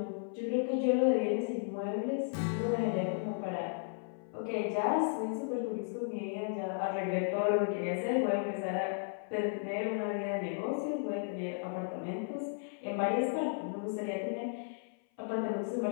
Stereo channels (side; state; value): right; silent; 55 dB below the other